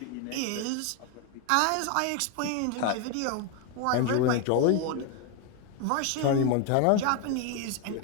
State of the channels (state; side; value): different; both; correlation 0.01